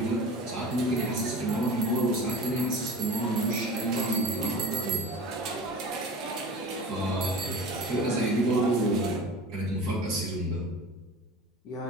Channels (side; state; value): both; normal; correlation 0.35